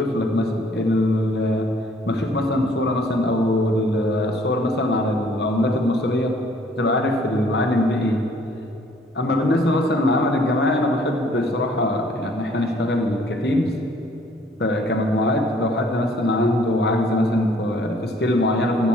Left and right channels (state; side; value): normal; both; correlation 0.60